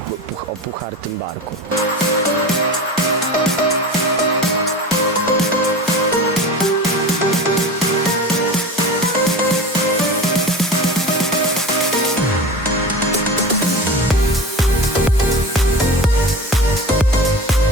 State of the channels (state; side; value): normal; both; correlation 0.32